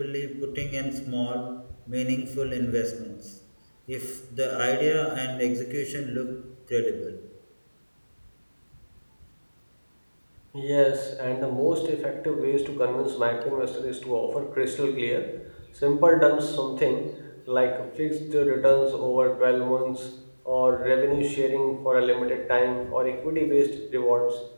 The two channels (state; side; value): inverted; both; correlation -1.00